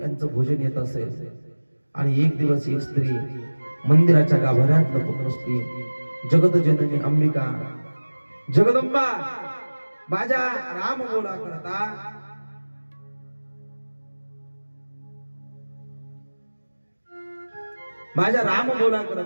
यांचं भोजन येत असेल. आणि एक दिवस एक स्त्री मंदिराच्या गाभाऱ्यात लपून बसली. जगत जननी अंबिका जगदंबा माझ्या राम बोला करता माझ्या राम बोला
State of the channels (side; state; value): both; inverted; correlation -1.00